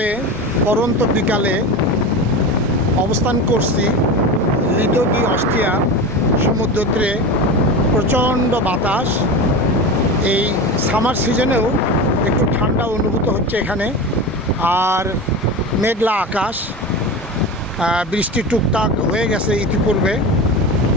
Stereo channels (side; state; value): both; normal; correlation 0.26